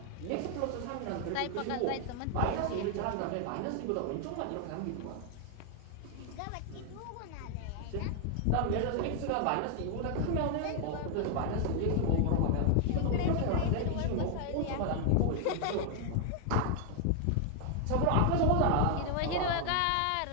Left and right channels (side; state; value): both; different; correlation 0.00